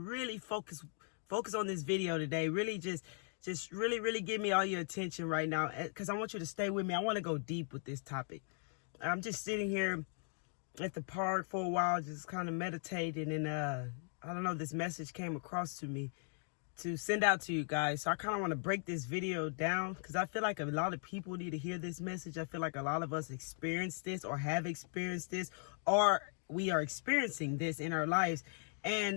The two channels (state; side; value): silent; right; 52 dB below the other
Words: focus on this video today. Really just really give me all your attention right now, because I want you to stay with me. I want to go deep with this topic. I'm just sitting here at the park for a while, just kind of meditating, and I don't know, this message came across to me to send out to you guys. So I kind of want to break this video down because I feel like a lot of people need to hear this message. I feel like a lot of us experienced this or have experienced this, or we are experiencing this in our lives.